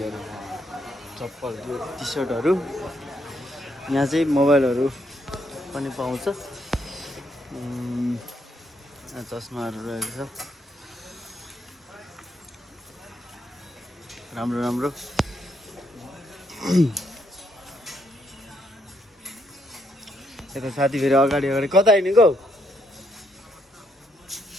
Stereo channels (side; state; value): both; normal; correlation 0.75